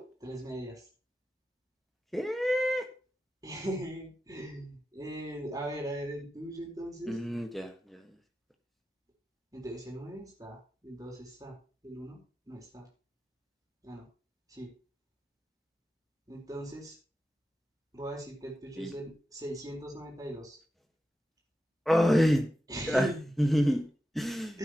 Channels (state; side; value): normal; both; correlation 0.91